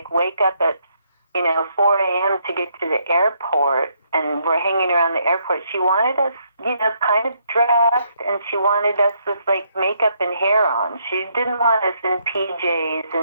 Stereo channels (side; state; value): both; inverted; correlation -0.73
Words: wake up at 4 a.m. to get to the airport and we're hanging around the airport. She wanted us, kind of dressed, and she wanted us with makeup and hair on. She didn't want us in PJs